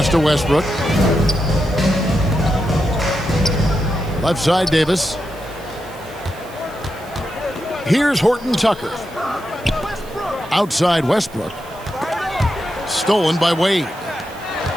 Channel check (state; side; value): noise; right; hiss, 23 dB below the sound